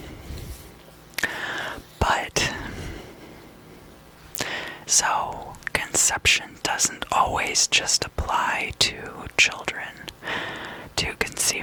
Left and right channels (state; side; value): identical; both; correlation 1.00